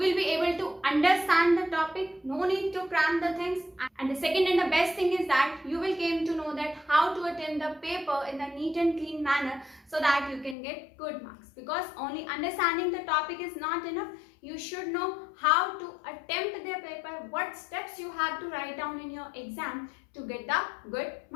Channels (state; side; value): drops out; right; at 10.6 s